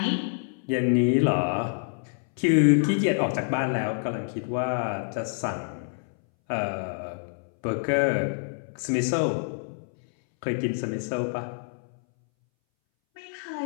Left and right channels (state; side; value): silent; right; 60 dB below the other